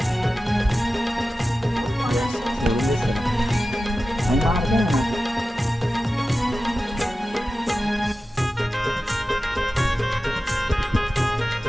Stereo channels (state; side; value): normal; both; correlation 0.94